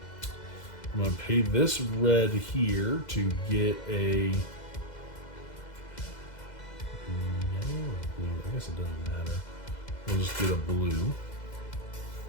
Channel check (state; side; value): late; right; 2.0 ms